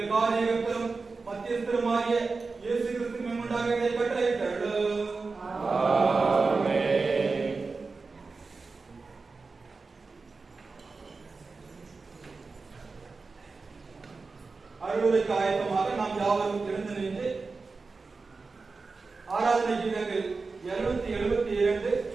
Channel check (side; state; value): left; quieter; 4.2 dB